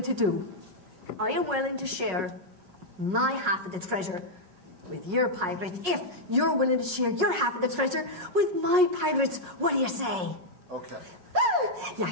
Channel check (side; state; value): left; late; 5.4 ms